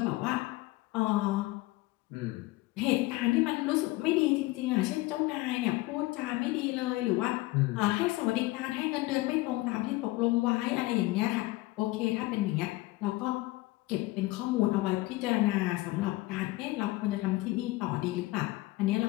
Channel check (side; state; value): right; quieter; 20.0 dB